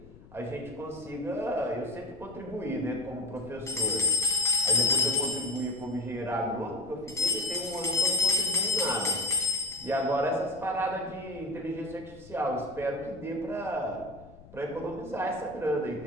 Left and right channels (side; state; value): left; noise; rumble, 21 dB below the sound